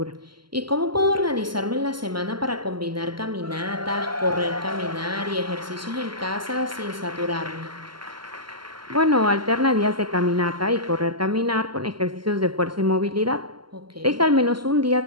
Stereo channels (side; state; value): left; late; 0.72 ms